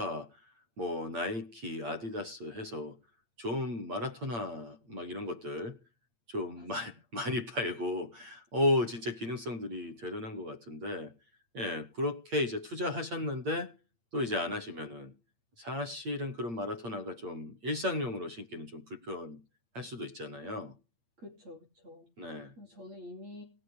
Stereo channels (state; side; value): late; left; 8.7 ms